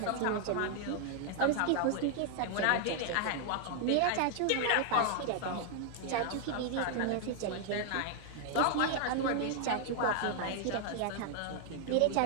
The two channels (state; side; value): different; both; correlation 0.00